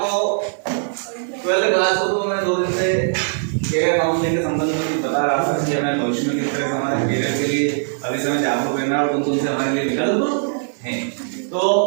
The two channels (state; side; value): silent; left; digital silence